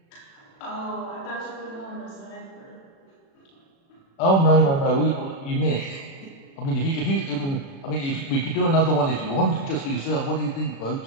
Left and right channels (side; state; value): right; late; 36 ms